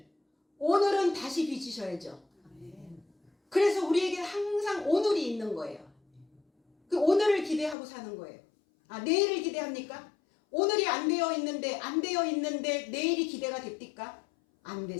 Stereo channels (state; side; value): drops out; right; at 7.8 s